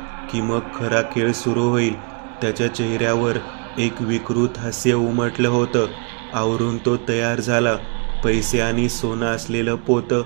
की मग खरा खेळ सुरू होईल. त्याच्या चेहऱ्यावर एक विकृत हास्य उमटलं होतं. आवरून तो तयार झाला. पैसे आणि सोनं असलेलं पोतं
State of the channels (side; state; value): left; quieter; 36.2 dB